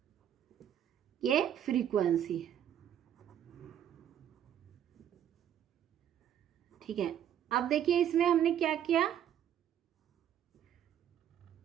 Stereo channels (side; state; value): left; quieter; 10.2 dB